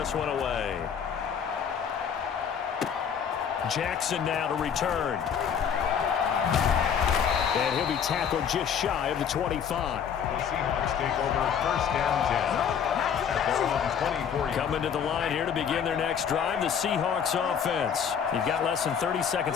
one away. Jackson now to return. And he'll be tackled just shy of the 25. The Seahawks take over first and 10. At their own 24. Coming to the line here to begin their next drive, the Seahawks offense. You've got less than 30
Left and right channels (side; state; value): right; quieter; 7.7 dB